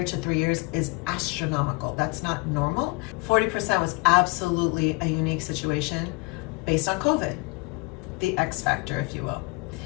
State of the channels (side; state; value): right; quieter; 27.8 dB